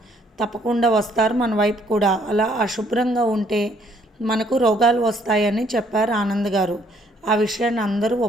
తప్పకుండా వస్తారు మన వైపు కూడా. అలా అశుభ్రంగా ఉంటే మనకు రోగాలు వస్తాయని చెప్పారు ఆనంద్ గారు. ఆ విషయాన్ని అందరూ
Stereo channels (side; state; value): both; normal; correlation 0.65